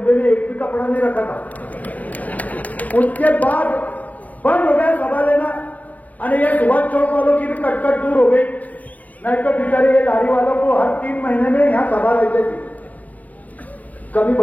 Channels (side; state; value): right; late; 0.074 ms